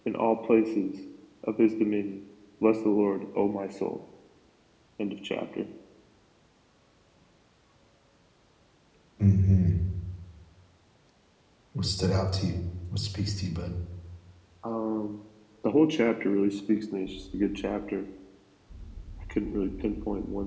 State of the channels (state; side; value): identical; both; correlation 1.00